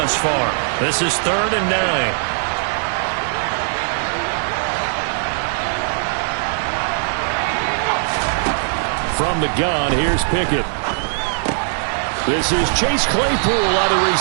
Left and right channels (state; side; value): silent; left; 66 dB below the other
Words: far. This is 3rd and 9. From the gun, here's Pickett. This is Chase Claypool on the